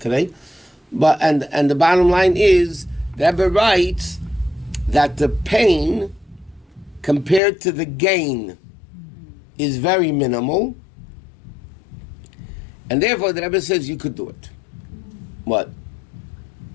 today. But and the bottom line is, the Rebbe writes that the pain compared to the gain is very minimal, and therefore the Rebbe says you could do it. What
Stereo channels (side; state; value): right; drops out; at 7.4 s